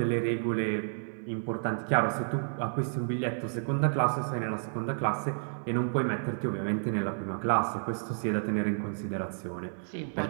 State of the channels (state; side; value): silent; left; digital silence